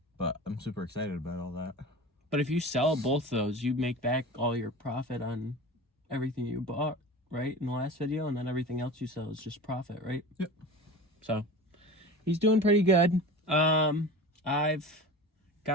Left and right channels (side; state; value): both; normal; correlation 0.34